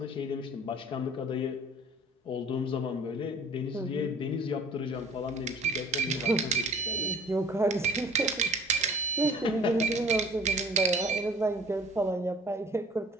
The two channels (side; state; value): both; normal; correlation 0.50